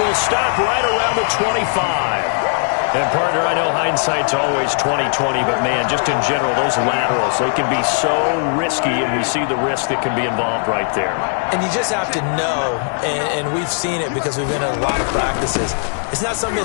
stop right around the 25. And, partner, I know hindsight's always 20/20, but, man, just in general, those laterals, they can be so risky, and we see the risk that can be involved right there. And you just have to know, and we've seen it because we've been in a lot of practices, it's not something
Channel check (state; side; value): silent; right; 65 dB below the other